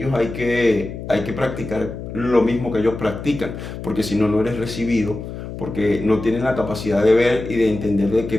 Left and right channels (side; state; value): left; noise; hum, 9 dB below the sound